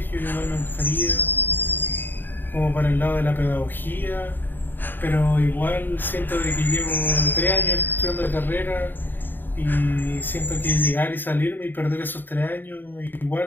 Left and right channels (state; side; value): late; right; 0.092 ms